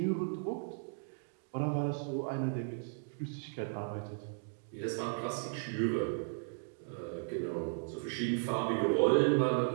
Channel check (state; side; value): silent; left; digital silence